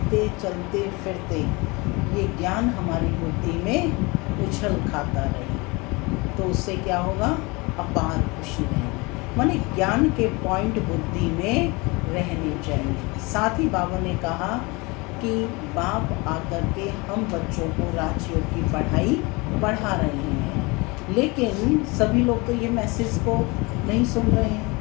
चलते फिरते ये ज्ञान हमारी बुद्धि में उछल खाता रहे तो उससे क्या होगा? अपार खुशी रहेगी। माने ज्ञान के पॉइंट बुद्धि में रहने चाहिए। साथ ही बाबा ने कहा कि बाप आकर के हम बच्चों को राजयोग की पढ़ाई पढ़ा रहे हैं, लेकिन सभी लोग तो ये मैसेज को नहीं सुन रहे हैं।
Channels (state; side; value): quieter; right; 26.1 dB